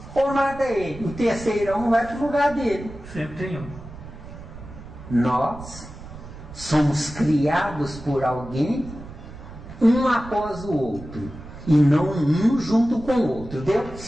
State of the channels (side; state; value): right; noise; rumble, 15 dB below the sound